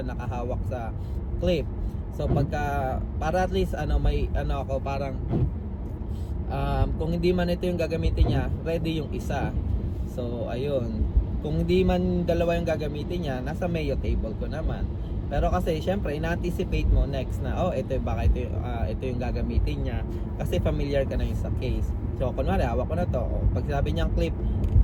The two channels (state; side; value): identical; both; correlation 1.00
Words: nakahawak sa clip. So pagka, para at least may ako parang kung hindi man ito yung gagamitin niya, ready yung isa. So ayun, kung hindi man dalawa yung gagamitin niya, nasa Mayo table ko naman. Pero kasi syempre ina-anticipate mo next na ito yung gagamitin niya, kasi familiar ka na yung sa case. So kunwari hawak ko na to, pag sabi niyang clip,